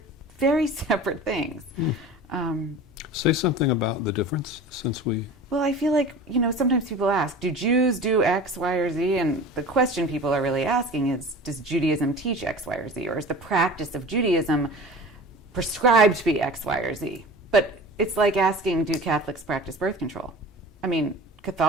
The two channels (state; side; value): normal; both; correlation 0.38